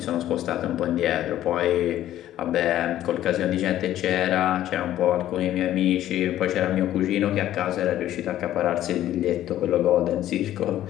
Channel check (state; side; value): quieter; right; 12.8 dB